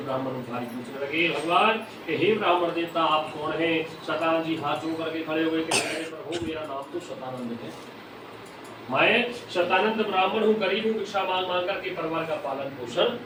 भारी पूछने लगे भगवान कि हे ब्राह्मण देवता आप कौन हैं? शतानंद जी हाथ जोड़ करके खड़े हुए कि प्रभु मेरा नाम तो शतानंद है, मैं शतानंद ब्राह्मण हूँ, गरीब हूँ, भिक्षा मांग मांग करके परिवार का पालन पोषण।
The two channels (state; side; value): identical; both; correlation 1.00